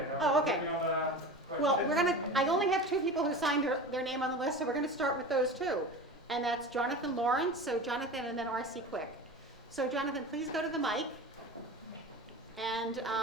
Oh, okay. Well, I only have 2 people who signed their name on the list, so we're gonna start with those 2. And that's Jonathan Lawrence, so Jonathan, and then R.C. Quick. So Jonathan, please go to the mic and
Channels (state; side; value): normal; both; correlation 0.32